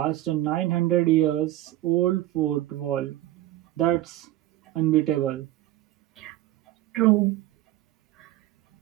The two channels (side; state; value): left; quieter; 15.1 dB